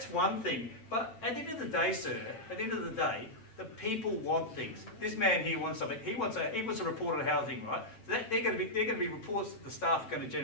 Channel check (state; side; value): late; right; 8.9 ms